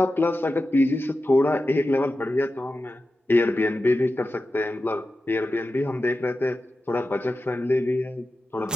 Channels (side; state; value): both; normal; correlation 0.92